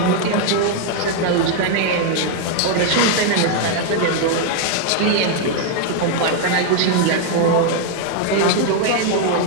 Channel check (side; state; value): both; different; correlation 0.00